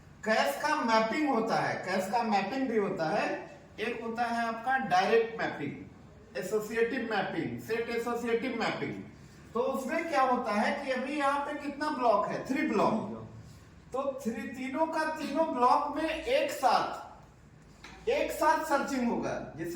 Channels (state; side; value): identical; both; correlation 1.00